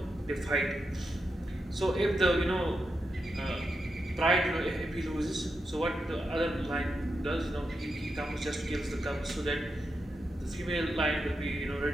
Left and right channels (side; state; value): both; normal; correlation 0.87